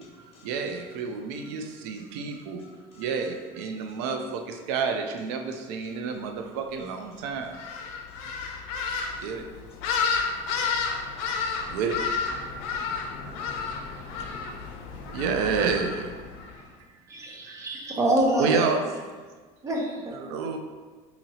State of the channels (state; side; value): normal; both; correlation 0.18